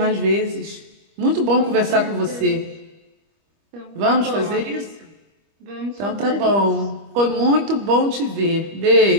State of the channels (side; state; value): left; late; 25 ms